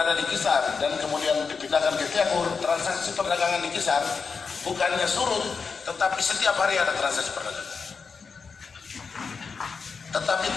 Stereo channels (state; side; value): quieter; right; 5.2 dB